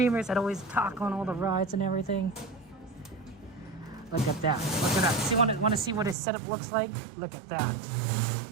that always talk on all the rides and everything. Look at that. Look at that. See, want to see what his setup looks like? Look at that.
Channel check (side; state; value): left; drops out; at 6.2 s